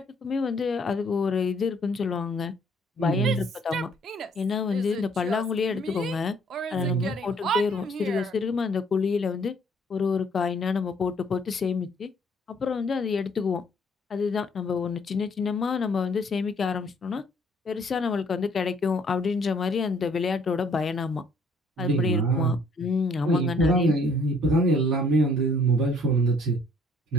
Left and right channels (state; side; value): normal; both; correlation 0.62